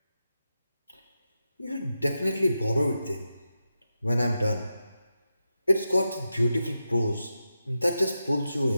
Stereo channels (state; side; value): inverted; both; correlation -0.89